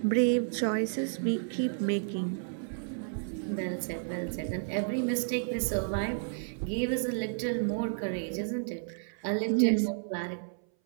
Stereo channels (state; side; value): silent; left; 57 dB below the other